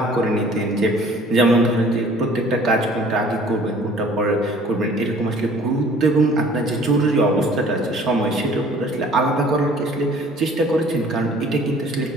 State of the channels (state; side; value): normal; both; correlation 0.52